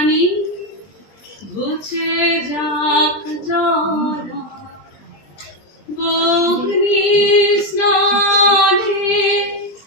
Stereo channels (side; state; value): right; late; 20 ms